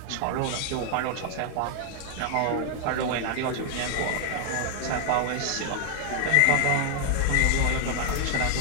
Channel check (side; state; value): both; different; correlation 0.00